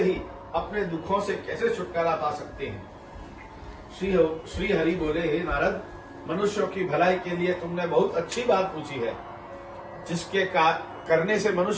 ही अपने दुखों से कैसे छुटकारा पा सकते हैं। श्री हरि बोले, हे नारद, मनुष्यों की भलाई के लिए तुमने बहुत अच्छी बात पूछी है। जिसके करने से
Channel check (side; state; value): both; identical; correlation 1.00